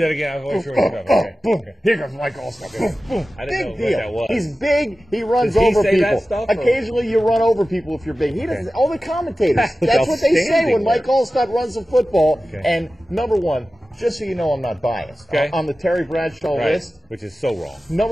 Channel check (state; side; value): normal; both; correlation 0.95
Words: again. I wasn't sure what you're boom. Here comes Mike Allstott. Boom, boom. I didn't know big deal. What that was. He's big. He runs Does he over say people. That stuff, occasionally, you run over people if you're big. He doesn't. All the commentators. That's what they say when Mike Allstott runs the football. And number 1. Just so you know, I'm not biased. On the Terry Bradshaw list, which is so wrong.